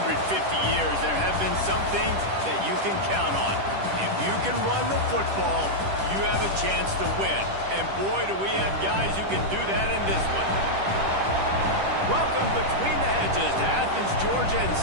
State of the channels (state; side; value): late; left; 10 ms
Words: years, there have been some things that you can count on. If you can run the football, you have a chance to win. And boy, do we have guys who can do that in this one. Welcome between the hedges to Athens, Georgia and